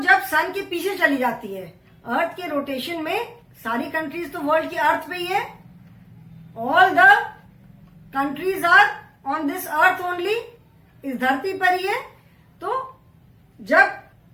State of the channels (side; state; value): both; identical; correlation 1.00